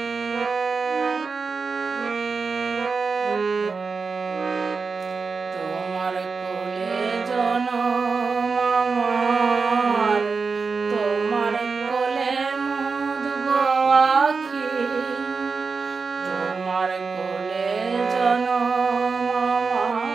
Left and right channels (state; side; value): quieter; left; 4.7 dB